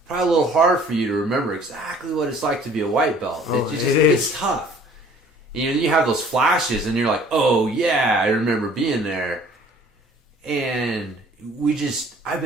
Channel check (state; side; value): normal; both; correlation 0.53